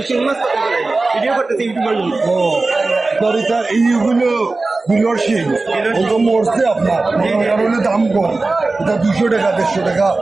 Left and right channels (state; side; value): quieter; left; 3.4 dB